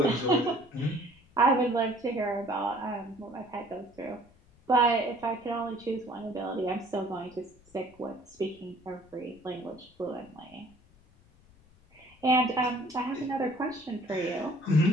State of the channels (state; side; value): noise; left; rumble, 28 dB below the sound